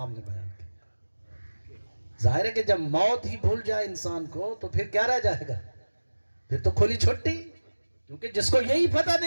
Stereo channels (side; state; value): both; inverted; correlation -1.00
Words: نے بیان کیا. ظاہر ہے کہ جب موت ہی بھول جائے انسان کو تو پھر کیا رہ جائے گا, پھر تو کھلی چھٹی. کیونکہ جس کو یہی پتہ